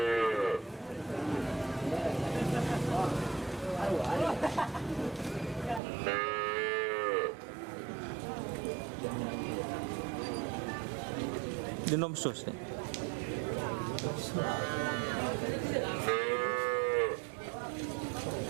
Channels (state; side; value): drops out; left; at 5.8 s